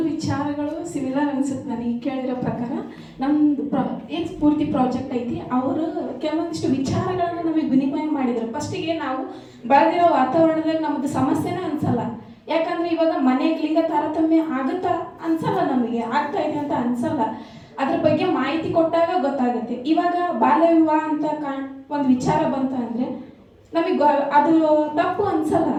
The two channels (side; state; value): both; identical; correlation 1.00